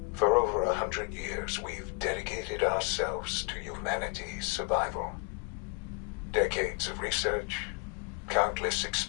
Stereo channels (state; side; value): quieter; right; 33.8 dB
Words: For over 100 years, we've dedicated ourselves to humanity's survival. Decades of research, countless